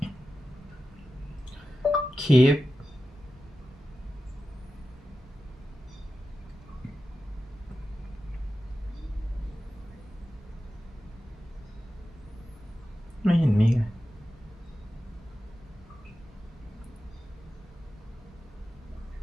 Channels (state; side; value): normal; both; correlation 0.92